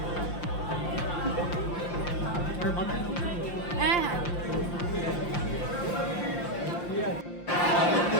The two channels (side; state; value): right; late; 5.7 ms